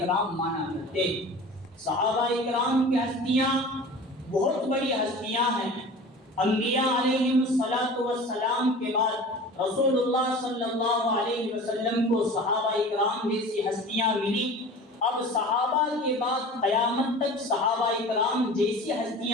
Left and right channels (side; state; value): both; normal; correlation 0.39